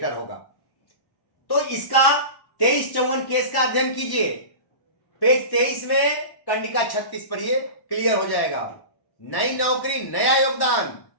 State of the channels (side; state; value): right; late; 1.1 ms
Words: होगा। तो इसका 2354 केस का अध्ययन कीजिए। पेज 23 में कंडिका 36 पढ़िए, क्लियर हो जाएगा। नई नौकरी, नया योगदान।